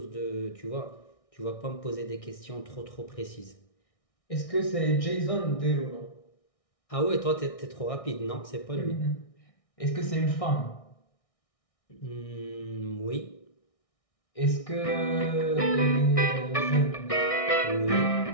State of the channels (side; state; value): right; late; 1.6 ms